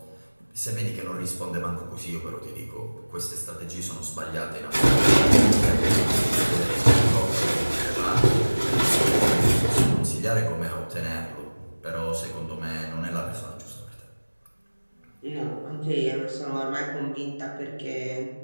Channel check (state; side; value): inverted; both; correlation -1.00